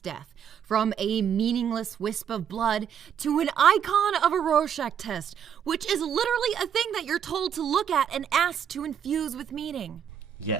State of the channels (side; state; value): left; quieter; 8.4 dB